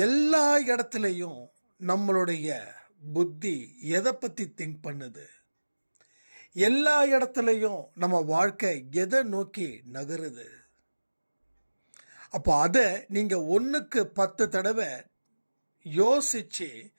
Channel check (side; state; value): both; inverted; correlation -1.00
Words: எல்லா இடத்துலையும் நம்மளுடைய புத்தி எதை பற்றி திங்க் பண்ணுது, எல்லா இடத்துலையும் நம்ம வாழ்க்கை எதை நோக்கி நகருது. அப்போ அதை நீங்கள் 1க்கு 10 தடவை யோசிச்சு